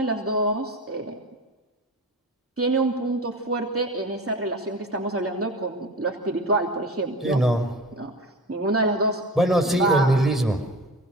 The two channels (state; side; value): normal; both; correlation 0.32